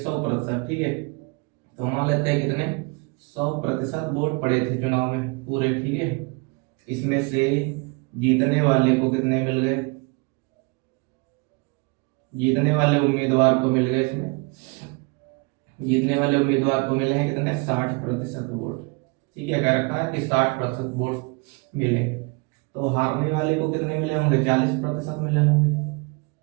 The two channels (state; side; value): quieter; left; 29.4 dB